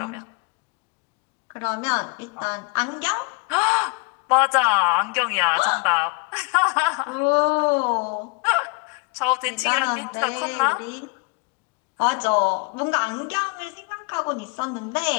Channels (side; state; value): right; quieter; 31.3 dB